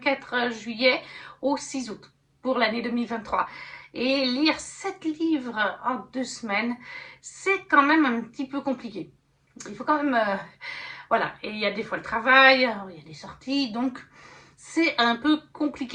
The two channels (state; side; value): identical; both; correlation 1.00